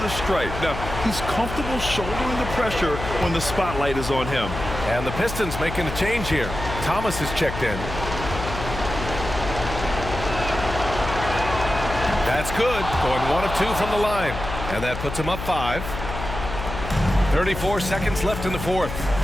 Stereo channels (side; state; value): left; noise; hum, 7 dB below the sound